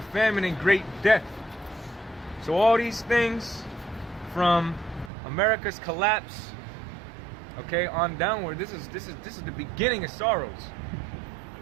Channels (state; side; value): drops out; left; at 5.1 s